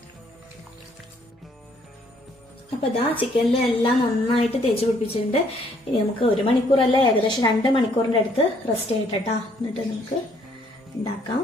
അപ്പൊ ചിക്കനിലെല്ലാം നന്നായിട്ട് തേച്ച് പിടിപ്പിച്ചിട്ടുണ്ട്. ഇനി നമുക്ക് 1 മണിക്കൂറല്ല, ഏകദേശം 2 മണിക്കൂറിന്റെ അടുത്ത് റെസ്റ്റ് ചെയ്യട്ടെ. എന്നിട്ട് നമുക്ക് ഉണ്ടാക്കാം.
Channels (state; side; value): normal; both; correlation 0.66